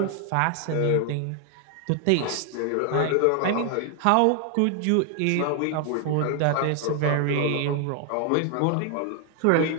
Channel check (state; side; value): different; both; correlation 0.00